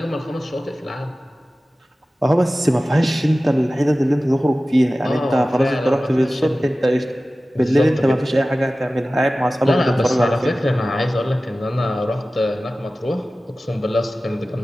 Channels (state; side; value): normal; both; correlation 0.96